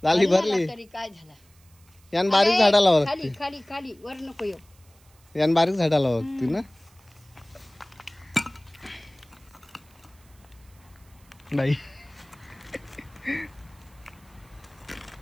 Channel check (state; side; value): noise; right; hiss, 30 dB below the sound